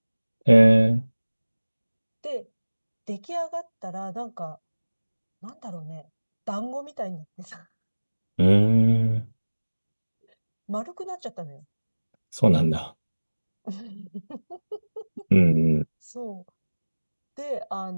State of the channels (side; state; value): both; inverted; correlation -1.00